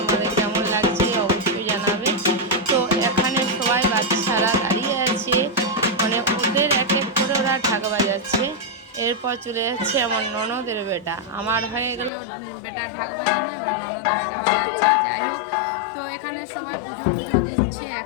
কেমন লাগছে অবশ্যই জানাবে। তো এখানে সবাই বাচ্চারা দাঁড়িয়ে আছে, মানে ওদের এক এক করে ওরা ঢাক বাজাচ্ছে। এরপর চলে যাচ্ছে আমার ননদের বেটা, আমার হয়ে গেল বেটা ঢাক বাজানো, এবার ননদের বেটা বাজাচ্ছে। যাই হোক, তো এখানে সবাই পুজো টুজো দিচ্ছে।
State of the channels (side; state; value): right; drops out; at 12.1 s